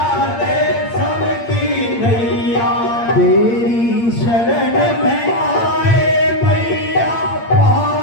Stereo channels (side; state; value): right; late; 8.7 ms